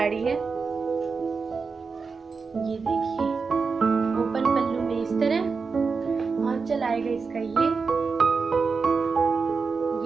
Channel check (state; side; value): quieter; left; 4.9 dB